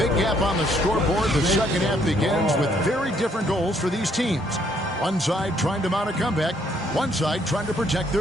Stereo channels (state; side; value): normal; both; correlation 0.68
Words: gap on the scoreboard, the second half begins with very different goals for these teams. One side trying to mount a comeback, one side trying to protect